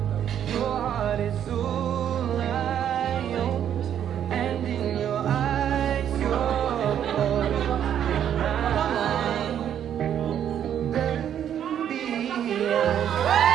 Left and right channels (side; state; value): left; quieter; 9.7 dB